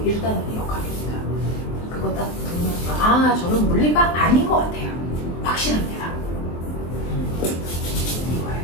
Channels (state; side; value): late; right; 23 ms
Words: 1단원이 역학입니다. 그거 딱 들으면서, 아, 저는 물리가 아닌 것 같아요. 확실합니다.